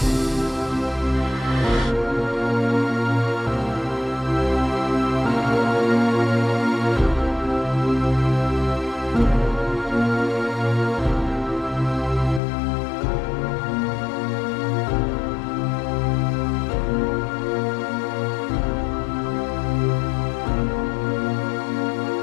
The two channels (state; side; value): drops out; right; at 12.4 s